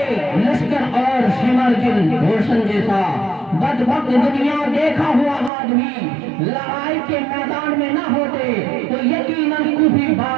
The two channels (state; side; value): drops out; left; at 5.5 s